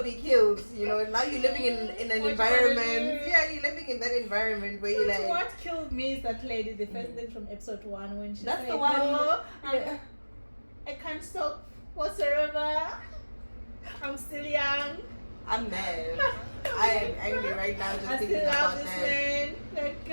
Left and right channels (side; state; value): both; inverted; correlation -1.00